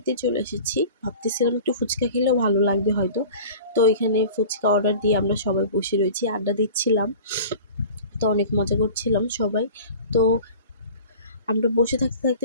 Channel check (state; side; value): inverted; both; correlation -0.40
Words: চলে এসেছি, ভাবতেছিলাম একটু ফুচকা খেলেও ভালো লাগবে হয়তো। তো এখানে ফুচকা অর্ডার দিয়ে আমরা সবাই বসে রয়েছি, আড্ডা দিচ্ছিলাম, তো অনেক মজা করছিলাম সবাই। তো আমরা বসে থাকতে থাকতে